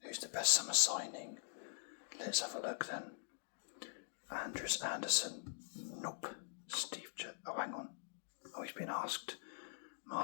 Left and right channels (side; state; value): right; silent; digital silence